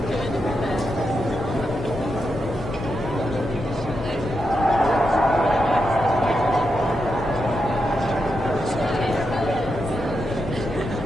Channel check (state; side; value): normal; both; correlation 0.86